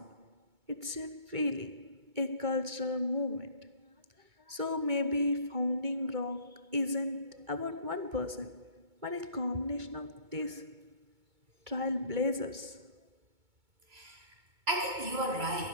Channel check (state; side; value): late; left; 2.2 ms